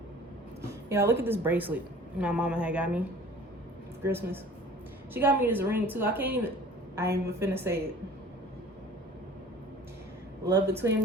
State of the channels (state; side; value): normal; both; correlation 0.46